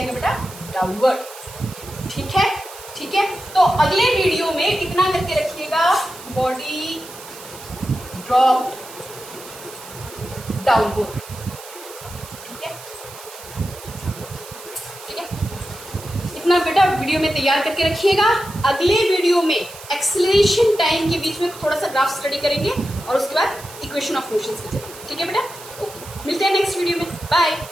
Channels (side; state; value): right; noise; hiss, 16 dB below the sound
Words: बेटा, डाउनवर्ड। ठीक है, ठीक है, तो अगले वीडियो में इतना करके रखिएगा, बॉडी ड्रॉप डाउनवर्ड। इतना बेटा वीडियो में तैयार करके रखिएगा। अगले वीडियो में एक्सेलरेशन टाइम के बीच में थोड़ा सा ग्राफ स्टडी करेंगे और उसके बाद इक्वेशन ऑफ मोशन पे चलेंगे। ठीक है बेटा, ओके, मिलते हैं नेक्स्ट वीडियो में, बाय।